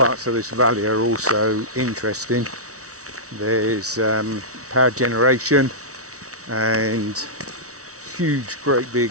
of this valley are also interesting. There's power generation and huge, great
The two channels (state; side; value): late; left; 0.65 ms